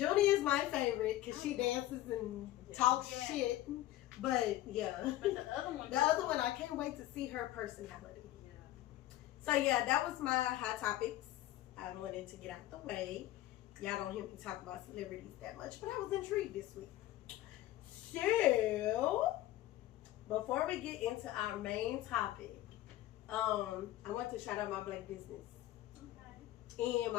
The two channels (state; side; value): quieter; right; 15.0 dB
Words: is my favorite because she dances and talks Yeah. shit. But yeah. But the other one. The other one, I can't wait to see her personality. Yeah. So yeah, that was my hot topics. I wanted to get out the way. Y'all don't hear me talk about celebrities that much, but I was intrigued this week. So, before we get into our main topic, I want to shout out my black business. Okay. And